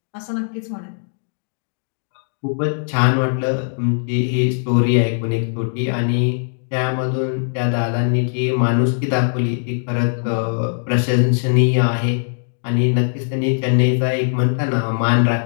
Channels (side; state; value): right; silent; digital silence